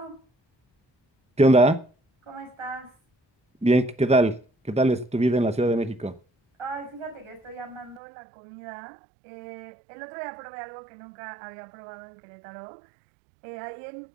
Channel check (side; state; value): left; drops out; at 8.0 s